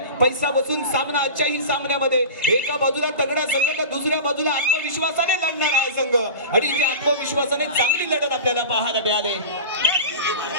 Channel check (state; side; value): inverted; both; correlation -0.32